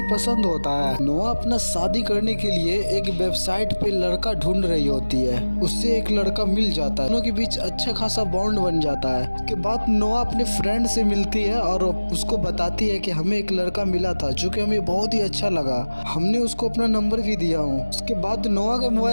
पसंद होता है। नोआ अपना शादी करने के लिए एक वेबसाइट पे लड़का ढूंढ रही होती है। उससे एक लड़का मिल जाता है। दोनों के बीच अच्छा खासा बॉन्ड बन जाता है। उसके बाद नोआ अपने फ्रेंड से मिलती है और उसको बताती है कि हमें एक लड़का मिला था जो कि हमें बहुत ही अच्छा लगा, हमने उसको अपना नंबर भी दिया हूँ। उसके बाद नोआ के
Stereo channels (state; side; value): inverted; both; correlation -1.00